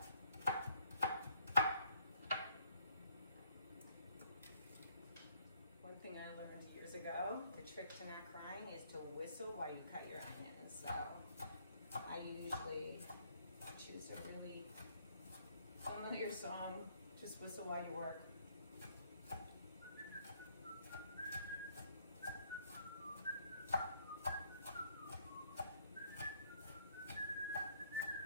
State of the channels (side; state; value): both; inverted; correlation -0.66